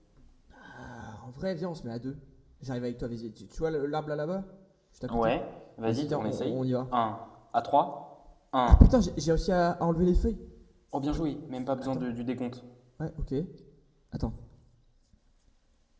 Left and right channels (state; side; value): identical; both; correlation 1.00